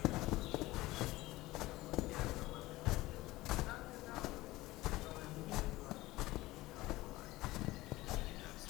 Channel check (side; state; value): right; quieter; 18.6 dB